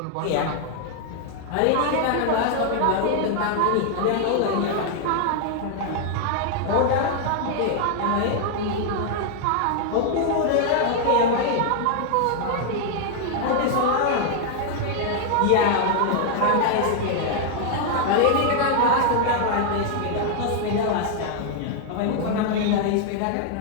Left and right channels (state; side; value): different; both; correlation 0.00